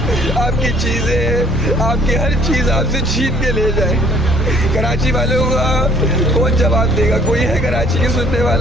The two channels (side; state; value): both; normal; correlation 0.58